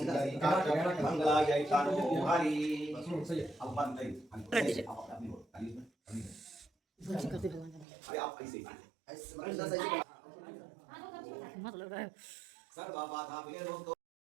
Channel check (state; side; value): drops out; left; at 7.9 s